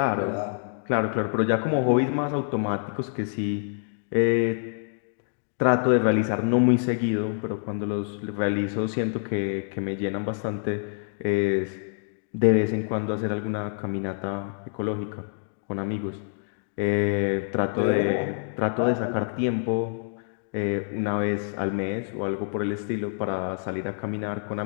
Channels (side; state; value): right; silent; digital silence